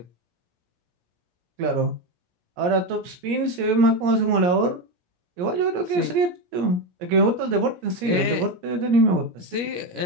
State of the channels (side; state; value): left; late; 17 ms